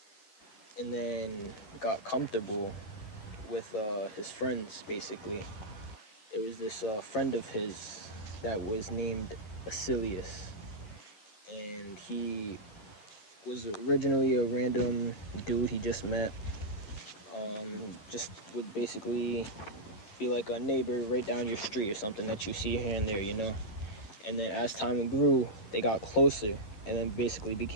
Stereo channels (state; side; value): late; right; 10 ms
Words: and then got comfortable with his friends. Basically, there was this friend of his that was named Basilius, and he was originally a random dude he just met. Just would basically be like a neighbor right down your street or something that you see here and there, And then as time grew, they got closer and then basically